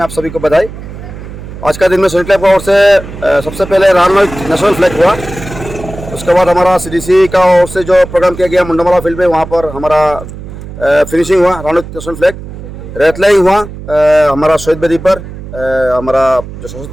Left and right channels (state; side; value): noise; right; hum, 12 dB below the sound